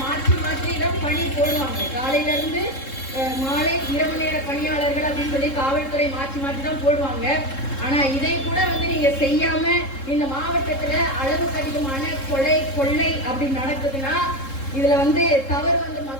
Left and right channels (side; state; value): right; late; 3.7 ms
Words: மாற்றி தான் பணி போடுவாங்க. காலையில இருந்து மாலை இரவு நேர பணியாளர்கள் அப்படின்னு சொல்லி காவல்துறை மாற்றி தான் போடுவாங்க. ஆனா இதை கூட வந்து நீங்க செய்யாம இந்த மாவட்டத்துல அளவுக்கு அதிகமான கொலை கொள்ளை அப்படி நடக்குதுன்னா இதுல வந்து தவறு வந்து